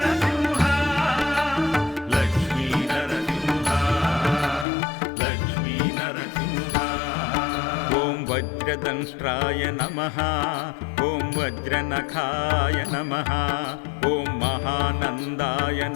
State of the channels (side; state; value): right; drops out; at 4.7 s